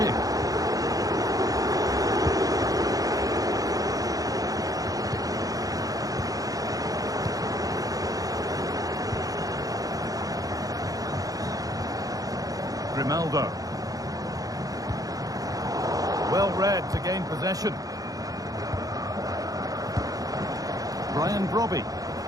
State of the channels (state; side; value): late; left; 0.17 ms